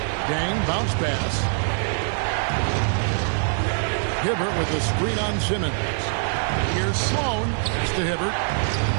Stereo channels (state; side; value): silent; left; 62 dB below the other